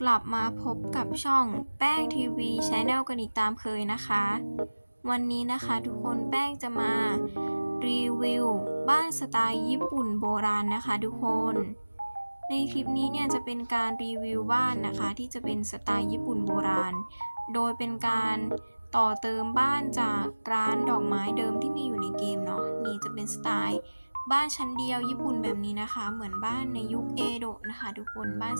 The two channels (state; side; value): inverted; both; correlation -1.00